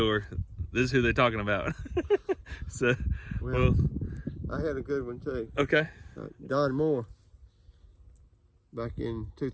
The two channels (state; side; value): identical; both; correlation 1.00